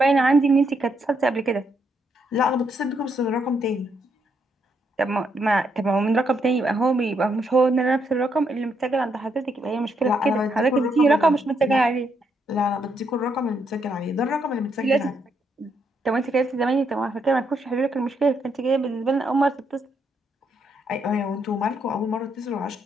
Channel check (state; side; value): normal; both; correlation 0.76